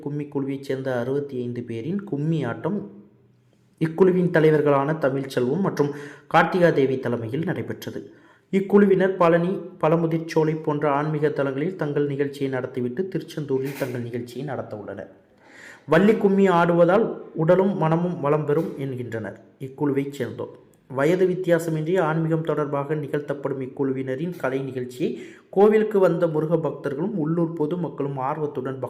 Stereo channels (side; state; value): both; identical; correlation 1.00